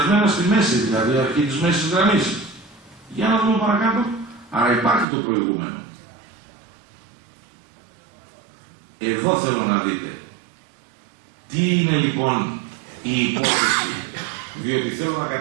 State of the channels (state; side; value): drops out; left; at 5.1 s